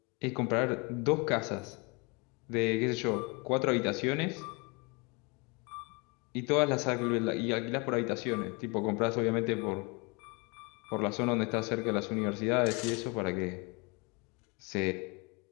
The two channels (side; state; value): right; quieter; 30.2 dB